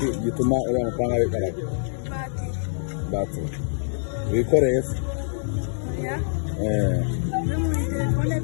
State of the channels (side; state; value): right; silent; 62 dB below the other